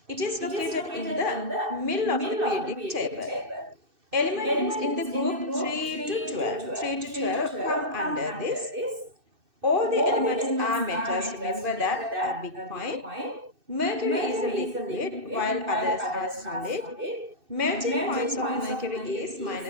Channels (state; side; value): late; left; 2.6 ms